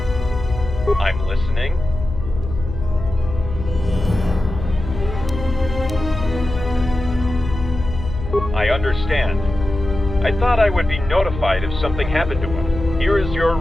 I'm listening. I understand. I thought I would be notified if something happened to him. Here is your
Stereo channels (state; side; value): noise; left; hum, 8 dB below the sound